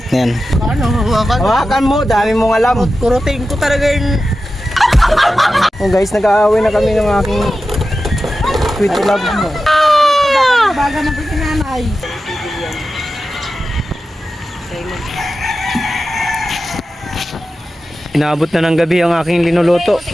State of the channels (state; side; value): normal; both; correlation 0.92